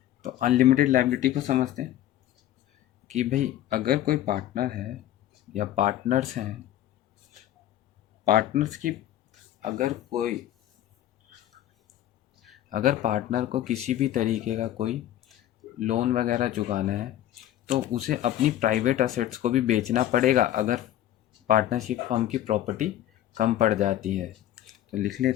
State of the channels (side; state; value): right; quieter; 12.7 dB